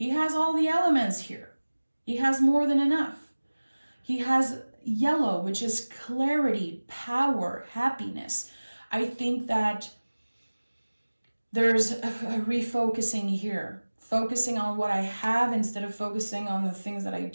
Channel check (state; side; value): inverted; both; correlation -1.00